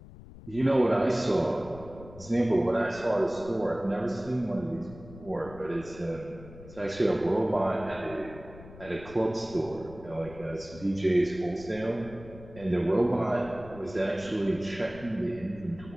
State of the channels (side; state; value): left; noise; rumble, 17 dB below the sound